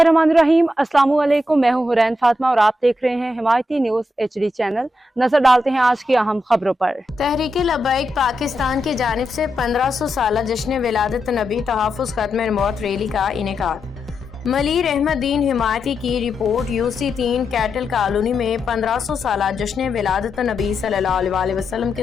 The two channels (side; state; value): both; normal; correlation 0.85